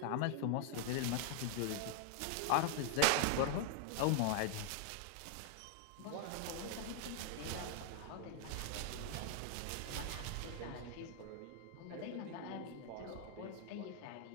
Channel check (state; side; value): different; both; correlation 0.00